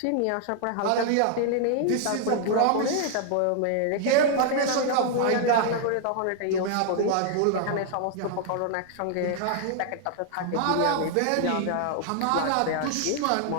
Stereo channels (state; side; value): different; both; correlation 0.00